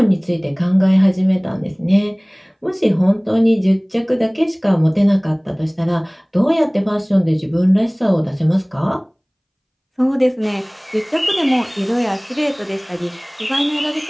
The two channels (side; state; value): both; identical; correlation 1.00